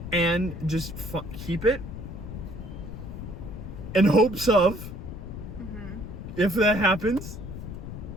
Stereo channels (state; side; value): noise; left; rumble, 9 dB below the sound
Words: And just keep it in hopes of, if that happens,